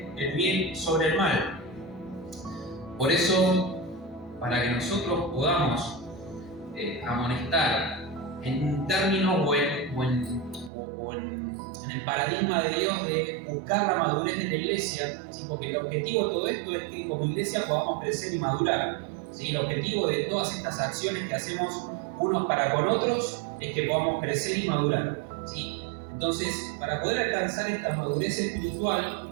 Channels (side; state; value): left; drops out; at 10.7 s